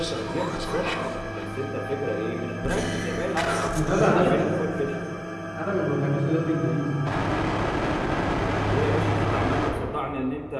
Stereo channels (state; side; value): identical; both; correlation 1.00